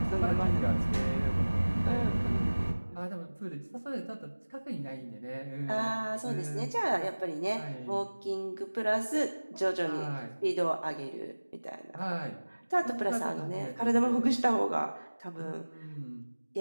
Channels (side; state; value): both; inverted; correlation -1.00